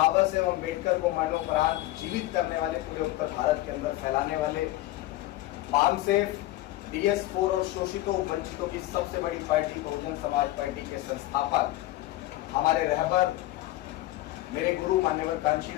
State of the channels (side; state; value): right; quieter; 16.5 dB